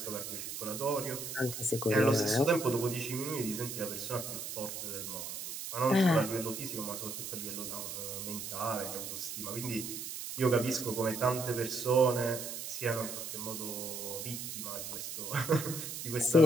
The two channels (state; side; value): noise; right; hiss, 7 dB below the sound